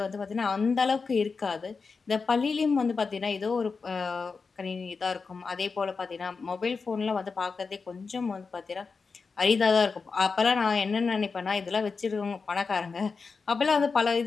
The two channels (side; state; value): right; quieter; 4.8 dB